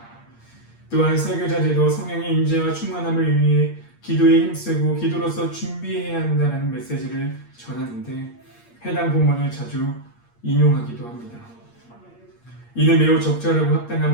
또한 설교자들도 성령의 임재와 충만함을 위해 기도에 힘쓰고 기도로서 준비해야 한다는 메시지를 전하는데 해당 본문을 자주 인용하기도 합니다. 이는 매우 적절하고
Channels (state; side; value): late; right; 8.6 ms